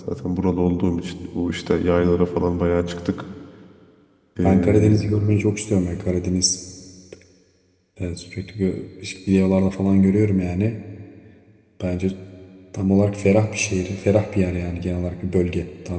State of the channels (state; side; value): identical; both; correlation 1.00